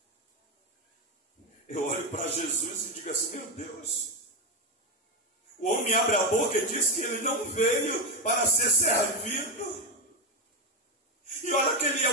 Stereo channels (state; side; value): normal; both; correlation 0.10